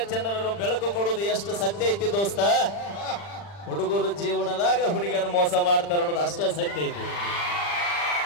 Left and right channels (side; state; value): right; late; 40 ms